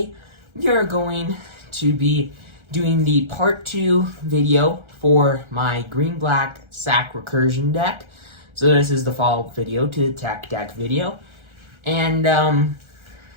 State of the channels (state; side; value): late; left; 1.4 ms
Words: we are going to be doing the part 2 video for my green-black sack recursion deck. So this is the follow-up video to the tech deck video. And